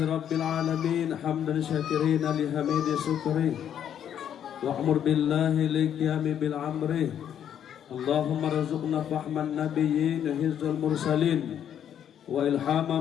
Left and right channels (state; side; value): quieter; right; 9.5 dB